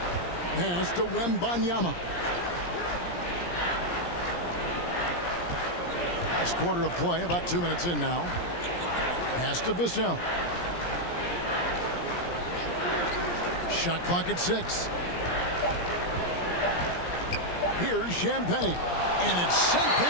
Pass to Wembanyama. Last quarter of play, about 2 minutes in now. Pass to Vassell. Shot clock at 6. Here's Champagny. And it's sent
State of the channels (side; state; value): right; late; 17 ms